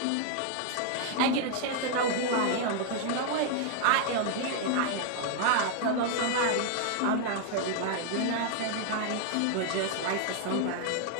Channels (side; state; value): both; different; correlation 0.00